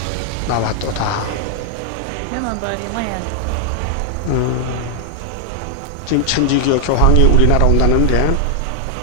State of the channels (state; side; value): different; both; correlation -0.01